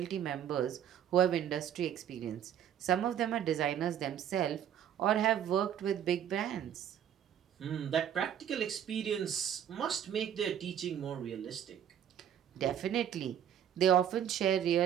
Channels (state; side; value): quieter; left; 9.7 dB